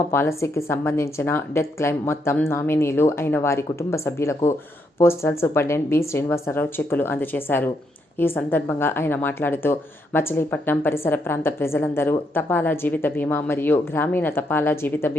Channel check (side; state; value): both; normal; correlation 0.77